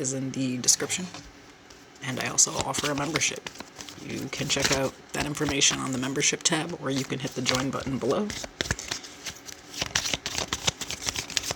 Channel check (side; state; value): both; identical; correlation 1.00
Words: in the description. And I also offer a membership. You can check out that information on the membership tab, or you can hit the join button below.